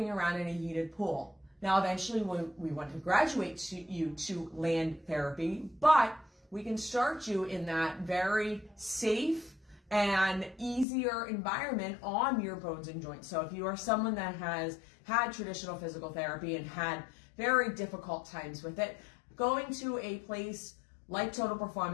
around in a heated pool. Now, eventually we want to graduate you to land therapy, but we can start you in that very safe and easier environment on your bones and joints. So if you are someone that has had traditional physical therapy and had very difficult times with it, going to a place like Total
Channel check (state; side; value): drops out; right; at 10.9 s